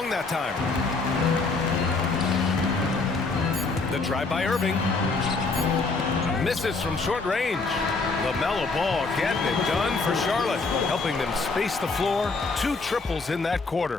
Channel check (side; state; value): right; quieter; 3.9 dB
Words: that time. The drive by Irving. Misses from short range. LaMelo Ball getting it done for Charlotte, helping them space the floor. 2 triples in that